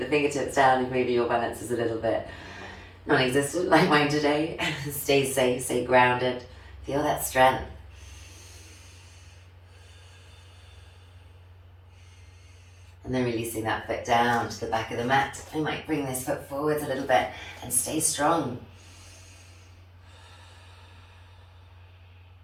fingertips down if maybe your balance is a little bit non-existent like mine today. Stay safe, stay grounded. Feel that strength. And then releasing that foot down to the back of the mat. I might bring this foot forwards a little bit and stay strong.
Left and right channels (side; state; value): both; identical; correlation 1.00